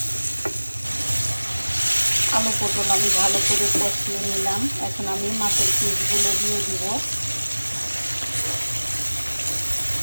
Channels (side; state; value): both; inverted; correlation -1.00